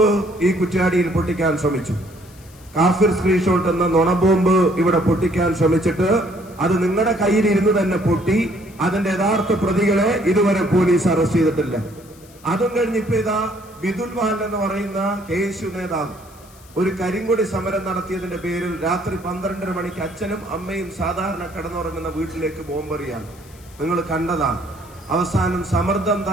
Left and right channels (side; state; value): left; noise; hiss, 25 dB below the sound